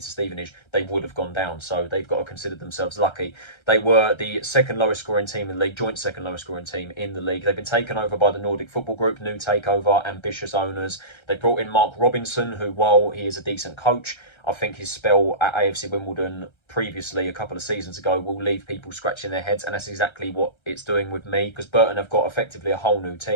to Stevenage, they would have gone down. So they've got to consider themselves lucky. They were the second lowest scoring team in the league, joint second lowest scoring team in the league. They've been taken over by the Nordic Football Group, new takeover, ambitious owners. They brought in Mark Robinson, who, while he is a decent coach, I think his spell at AFC Wimbledon previously, a couple of seasons ago, will leave people scratching their heads, and that's exactly what it's doing with me, because Burton have got effectively a whole new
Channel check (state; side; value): late; right; 1.3 ms